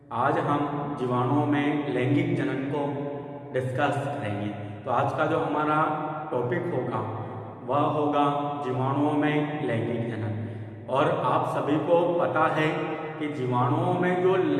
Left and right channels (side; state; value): both; identical; correlation 1.00